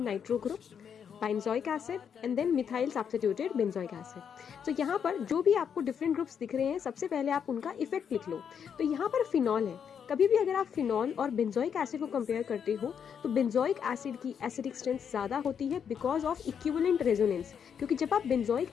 nitro group, benzoic acid and then methyl substituted benzoic acid. तो यहाँ पर जो भी आपको different groups दिख रहे हैं सबसे पहले आप उनका इफेक्ट लिख लो. तो यहाँ पर फिनॉल है. कभी भी अगर आप फिनॉल और बेंजोइक एसिड को कंपेयर करते हो तो बेंजोइक एसिड की एसिडिक स्ट्रेंथ ज़्यादा होती है बिकॉज ऑफ इक्विवेलेंट रेजोनेंस. क्योंकि जब आप बेंजोइक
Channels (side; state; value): right; quieter; 7.6 dB